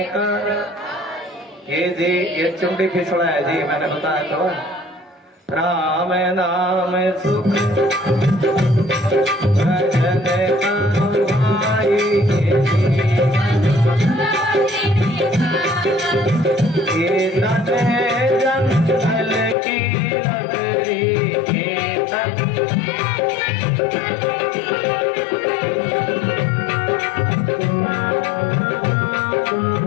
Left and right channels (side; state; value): right; drops out; at 19.6 s